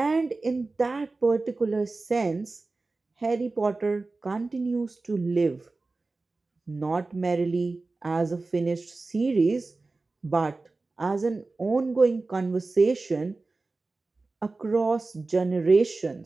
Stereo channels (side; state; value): left; quieter; 3.5 dB